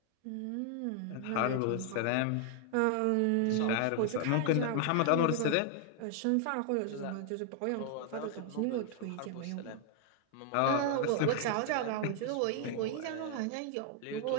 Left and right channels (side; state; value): both; different; correlation 0.00